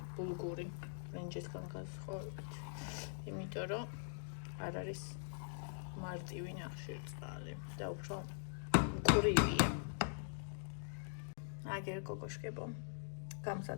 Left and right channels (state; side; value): silent; right; digital silence